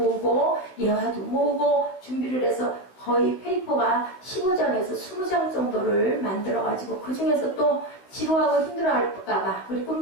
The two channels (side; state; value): right; late; 16 ms